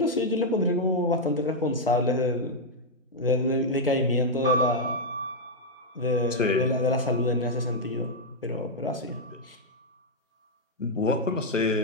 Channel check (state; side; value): normal; both; correlation -0.03